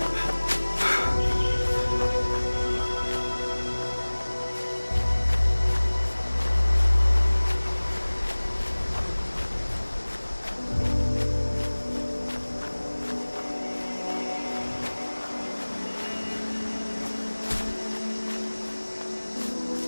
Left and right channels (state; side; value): inverted; both; correlation -1.00